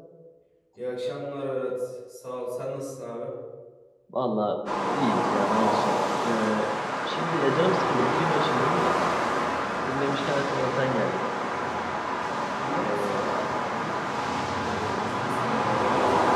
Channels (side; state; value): both; identical; correlation 1.00